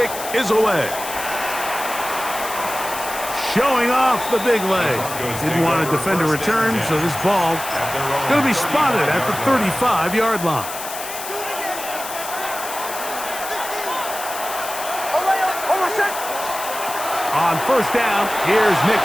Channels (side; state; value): left; noise; hiss, 9 dB below the sound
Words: is away. Showing off the big leg. Didn't want to defend a return, so this ball going to be spotted at the 35-yard line. On 1st down, here's Nix